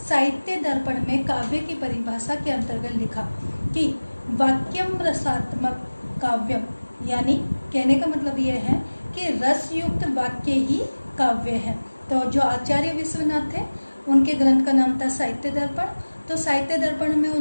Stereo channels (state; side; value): inverted; both; correlation -1.00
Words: साहित्य दर्पण में काव्य की परिभाषा के अंतर्गत लिखा कि वाक्यम रसात्मक काव्यम, यानी कहने का मतलब यह है कि रस युक्त वाक्य ही काव्य है। तो जो आचार्य विश्वनाथ थे उनके ग्रंथ का नाम था साहित्य दर्पण। तो साहित्य दर्पण में